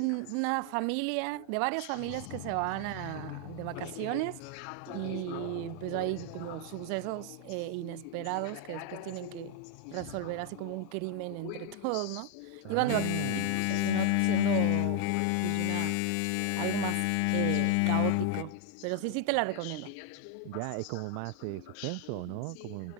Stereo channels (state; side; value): different; both; correlation 0.00